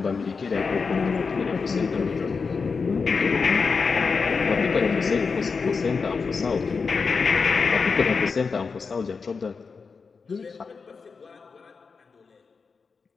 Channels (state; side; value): quieter; right; 5.0 dB